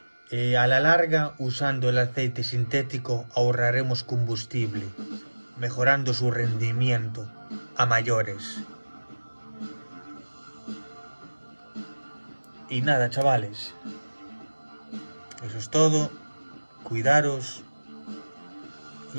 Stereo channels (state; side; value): inverted; both; correlation -1.00